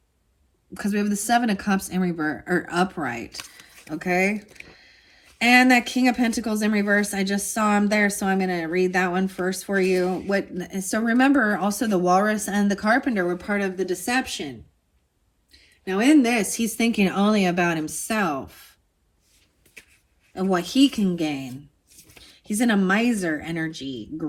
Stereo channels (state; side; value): identical; both; correlation 1.00